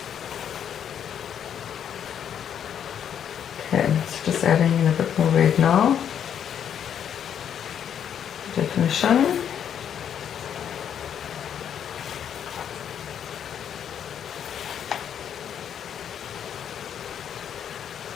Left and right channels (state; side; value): quieter; right; 8.9 dB